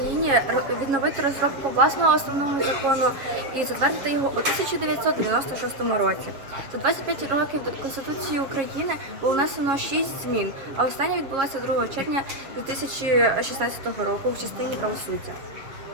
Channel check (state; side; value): late; left; 7.3 ms